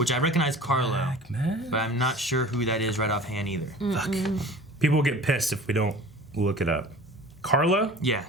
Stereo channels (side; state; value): both; normal; correlation 0.42